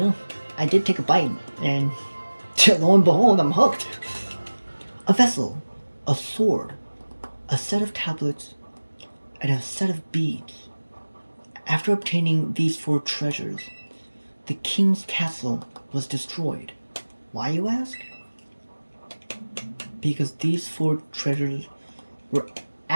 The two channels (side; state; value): both; inverted; correlation -1.00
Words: I did take a bite, and lo and behold, I'm hooked. A vessel, a sword, a set of tablets, and a set of beads. After obtaining these 4 treasures, the king's castle was destroyed. Why, you ask? Because these 4 treasures were